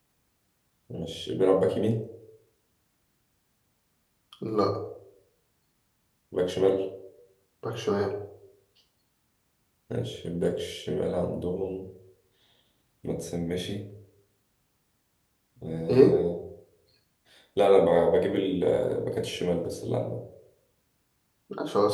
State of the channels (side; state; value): both; identical; correlation 1.00